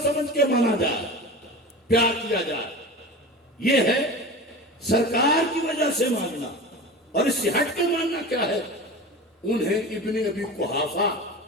سمجھ کے مانا جائے، پیار کیا جائے، یہ ہے سرکار کی وجہ سے ماننا۔ اور اس سے ہٹ کے ماننا کیا ہے؟ انہیں ابن ابی قحافہ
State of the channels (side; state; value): both; normal; correlation 0.32